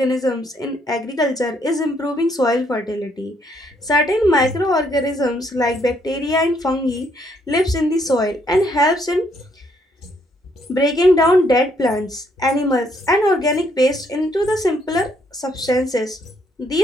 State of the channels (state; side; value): normal; both; correlation 0.70